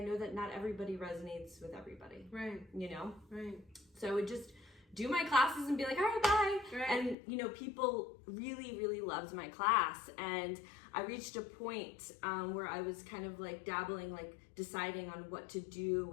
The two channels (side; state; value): right; drops out; at 7.2 s